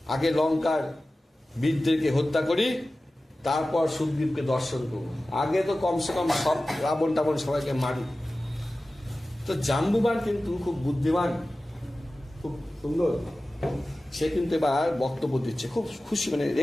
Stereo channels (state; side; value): normal; both; correlation 0.96